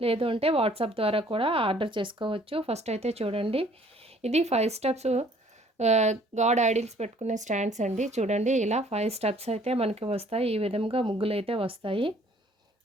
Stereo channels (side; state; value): both; normal; correlation 0.58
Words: లేదు అంటే వాట్సాప్ ద్వారా కూడా ఆర్డర్ చేసుకోవచ్చు. ఫస్ట్ అయితే చూడండి, ఇది 5 స్టెప్స్ గాడ్ ఐడిల్స్ పెట్టుకునే స్టాండ్స్ అండి. చూడండి, ఇలా 5 స్టెప్స్ అయితే మనకి వస్తాయి. ఈ విధంగా ముగ్గులు అయితే వస్తాయి.